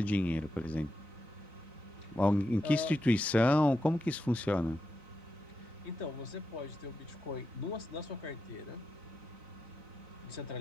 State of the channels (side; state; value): both; normal; correlation 0.86